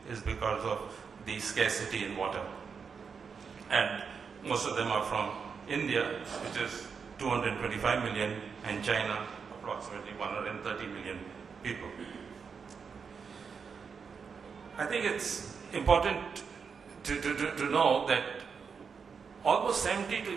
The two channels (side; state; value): left; quieter; 5.9 dB